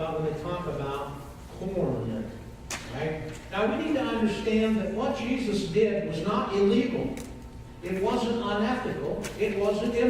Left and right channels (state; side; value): identical; both; correlation 1.00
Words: when they talk about corn. Right? Now we need to understand that what Jesus did was not illegal. It wasn't unethical. It wasn't